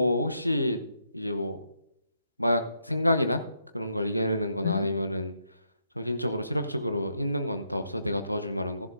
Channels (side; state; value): both; inverted; correlation -0.78